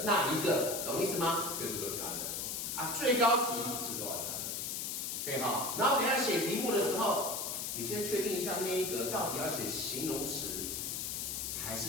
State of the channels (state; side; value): noise; left; hiss, 3 dB below the sound